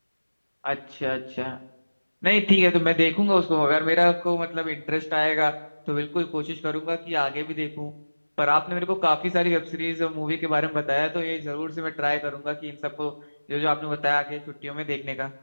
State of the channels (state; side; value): inverted; both; correlation -1.00